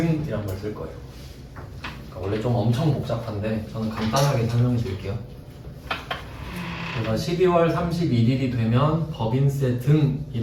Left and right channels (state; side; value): identical; both; correlation 1.00